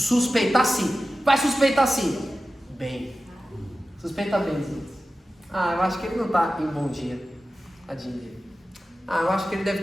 sim. Vai suspeitar sim. Bem. Suspeita bem, sim. Eu acho que ele não está em bom dia. Tadinho dele. Eu acho que ele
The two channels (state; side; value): normal; both; correlation 0.94